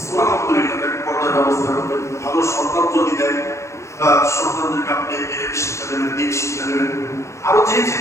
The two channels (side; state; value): right; late; 0.14 ms